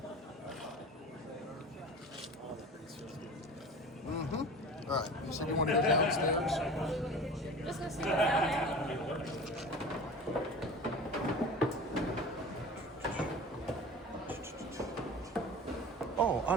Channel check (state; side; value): normal; both; correlation 0.36